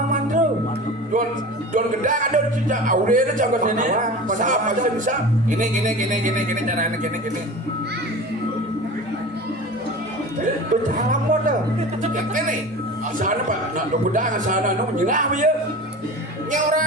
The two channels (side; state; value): both; normal; correlation 0.34